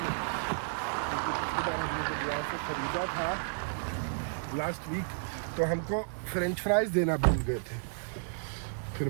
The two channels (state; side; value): silent; left; 56 dB below the other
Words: ने, क्योंकि पिछली बार हमने जब यहाँ से ख़रीदा था लास्ट वीक, तो हमको फ्रेंच फ्राइज़ देना भूल गए थे। फिर